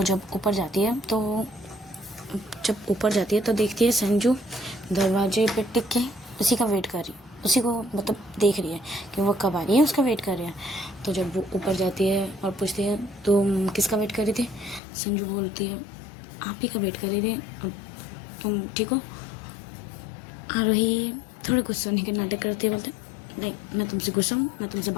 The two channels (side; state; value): right; drops out; at 14.8 s